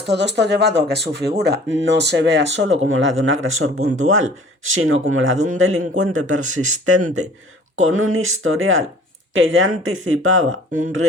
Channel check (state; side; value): normal; both; correlation 0.50